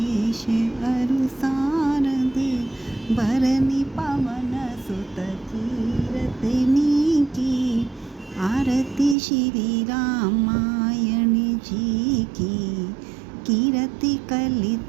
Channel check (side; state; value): left; drops out; at 9.2 s